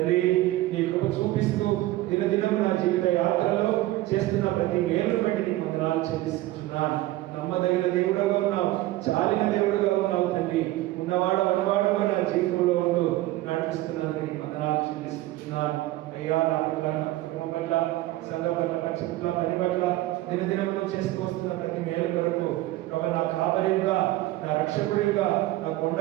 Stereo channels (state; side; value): quieter; left; 16.9 dB